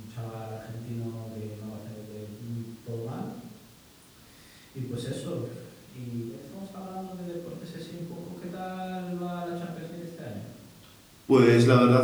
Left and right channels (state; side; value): identical; both; correlation 1.00